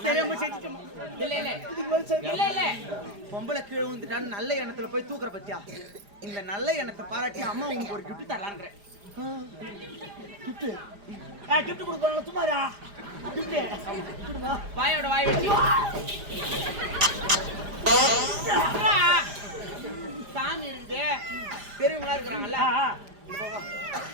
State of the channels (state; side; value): late; left; 4.9 ms